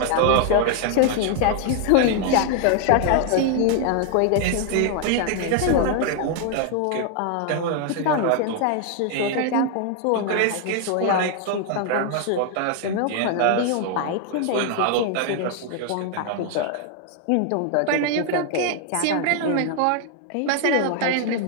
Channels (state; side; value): different; both; correlation 0.00